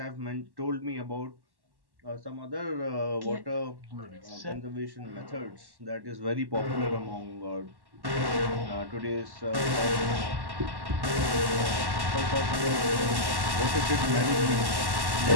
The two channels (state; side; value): late; left; 1.1 ms